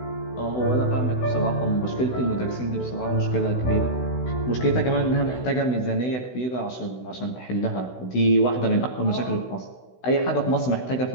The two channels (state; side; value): late; right; 16 ms